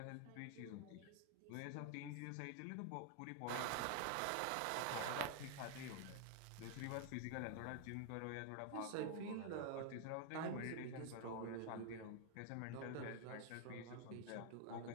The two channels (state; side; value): different; both; correlation 0.00